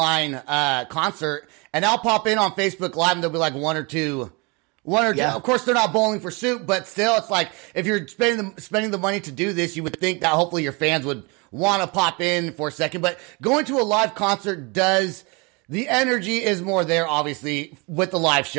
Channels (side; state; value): left; quieter; 29.3 dB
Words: concert, and I'll pop in on Facebook Live, and there'll be like one or two. Of course, they're not Bowling for Soup, but still, it's like if you're spending the money to do this, you would think that hopefully your fans would want to pop in for a second. But going to a live concert the energy is more there, obviously, with the live